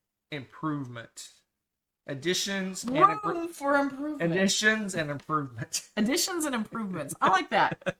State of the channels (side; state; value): both; identical; correlation 1.00